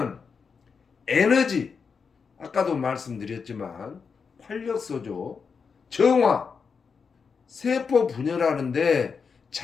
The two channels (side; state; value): right; quieter; 5.7 dB